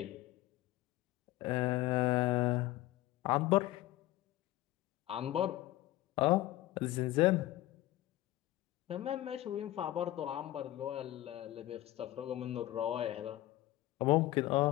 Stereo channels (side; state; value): right; quieter; 16.0 dB